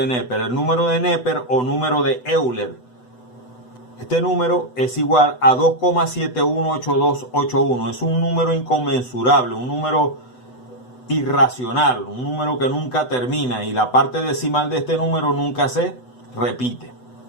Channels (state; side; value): late; right; 8.0 ms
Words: Neper. El número de Neper o número de Euler. Este número es igual a 2,718281. Es un número inconmensurable, un número irracional, un número que nunca termina y la parte decimal de este número nunca se repite.